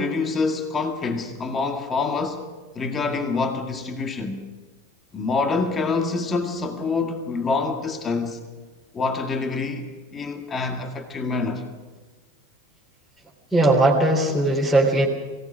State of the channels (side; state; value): both; normal; correlation 0.56